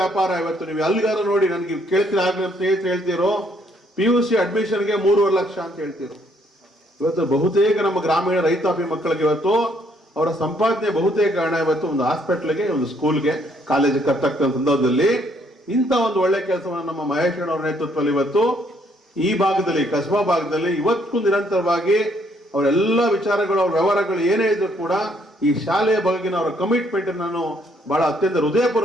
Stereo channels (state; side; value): normal; both; correlation 0.68